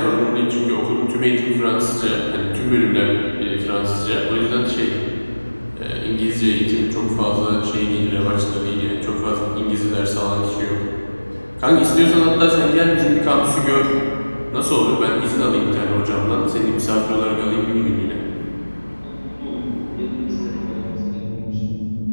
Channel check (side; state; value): both; inverted; correlation -1.00